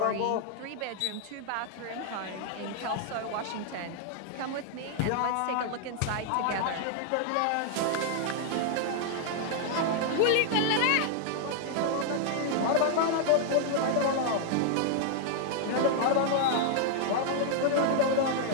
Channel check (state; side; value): different; both; correlation 0.00